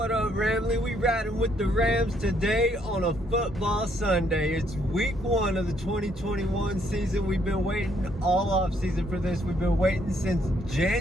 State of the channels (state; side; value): normal; both; correlation 0.70